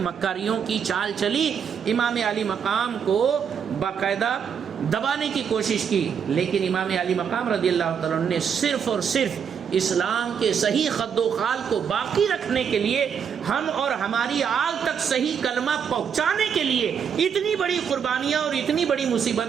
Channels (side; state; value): left; quieter; 7.4 dB